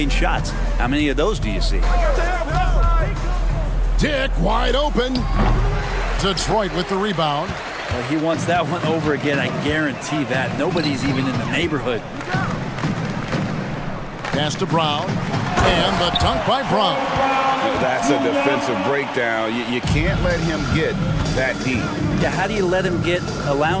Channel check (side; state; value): both; identical; correlation 1.00